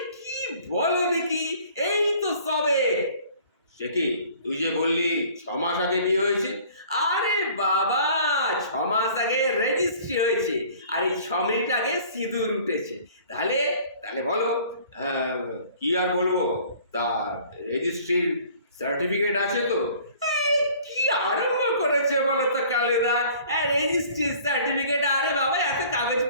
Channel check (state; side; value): inverted; both; correlation -0.51